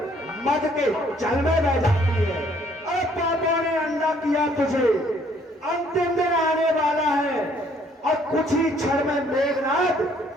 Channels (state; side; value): normal; both; correlation 0.63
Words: मद के जल में बह जाती है। अरे पापों ने अंधा किया तुझे, अंतिम दिन आने वाला है, और कुछ ही क्षण में मेघनाथ